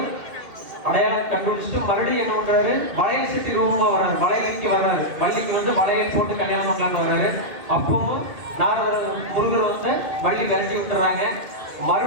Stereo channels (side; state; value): left; late; 2.2 ms